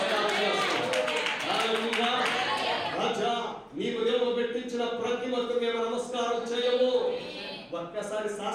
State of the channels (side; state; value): both; identical; correlation 1.00